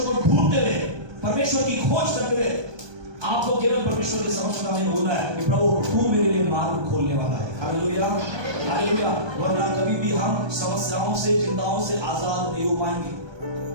को ढूंढते हुए, परमेश्वर की खोज करते हुए आपको केवल परमेश्वर के समक्ष में बोलना है कि प्रभु तू मेरे लिए मार्ग खोलने वाला है। Hallelujah, hallelujah. वरना कभी भी हम समस्याओं से, चिंताओं से आजाद नहीं हो पाएंगे।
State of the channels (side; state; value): left; late; 1.2 ms